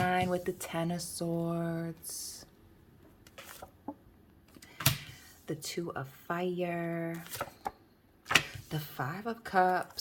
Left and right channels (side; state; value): both; identical; correlation 1.00